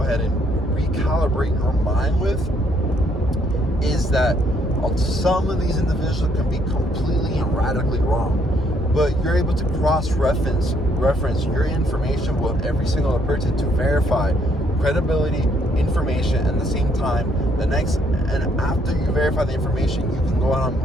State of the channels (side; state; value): both; normal; correlation 0.69